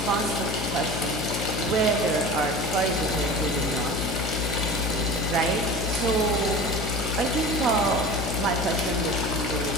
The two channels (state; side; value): noise; left; hum, 4 dB below the sound